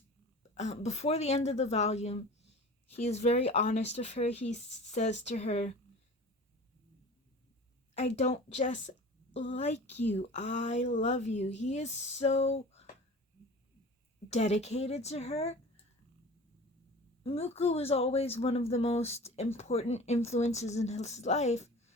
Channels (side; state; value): both; normal; correlation 0.39